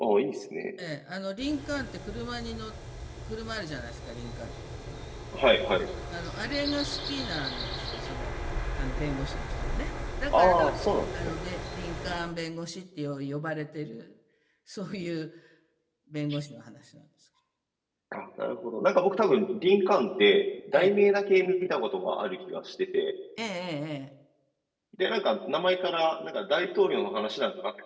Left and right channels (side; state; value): both; identical; correlation 1.00